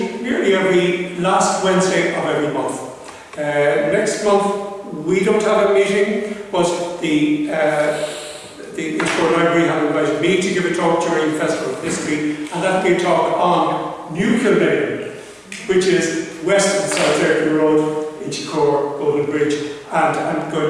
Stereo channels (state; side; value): identical; both; correlation 1.00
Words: nearly every last Wednesday of every month. Next month we don't have a meeting, but the Inchcore Library have invited me to give a talk during the Festival of History, and that will be a talk on New Kilmainham, which is west of South Ayrton Road, Inchcore, Golden Bridge, and I'm going